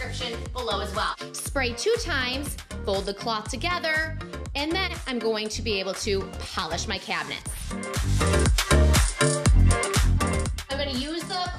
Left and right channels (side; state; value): both; identical; correlation 1.00